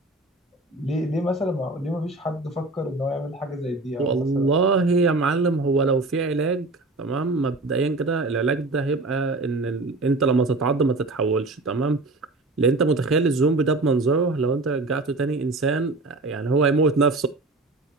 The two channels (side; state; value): left; quieter; 3.2 dB